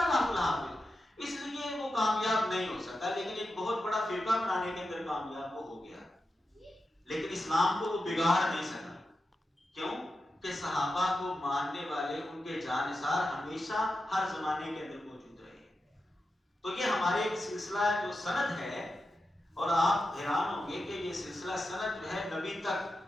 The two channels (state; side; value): normal; both; correlation 0.90